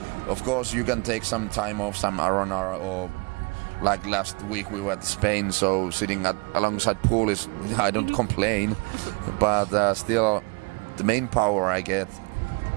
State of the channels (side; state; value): left; quieter; 29.5 dB